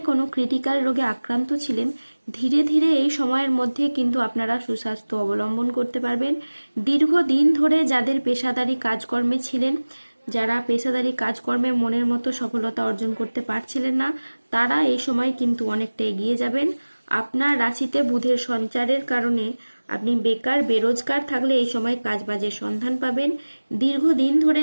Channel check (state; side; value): inverted; both; correlation -1.00